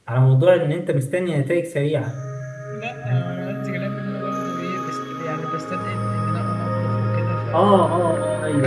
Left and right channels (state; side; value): identical; both; correlation 1.00